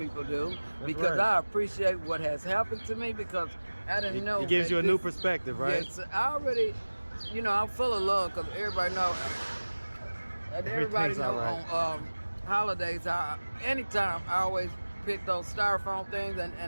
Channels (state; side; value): inverted; both; correlation -1.00